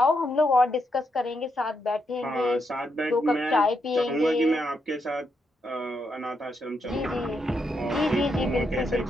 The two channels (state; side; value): normal; both; correlation 0.81